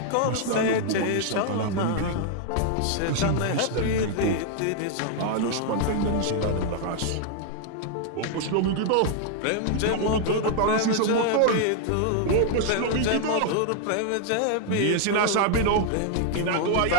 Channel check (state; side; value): different; both; correlation 0.00